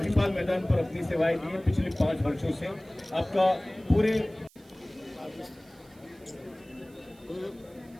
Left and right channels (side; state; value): right; noise; hiss, 29 dB below the sound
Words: मैदान पर अपनी सेवाएं दी है पिछले 5 वर्षों से। आपका पूरे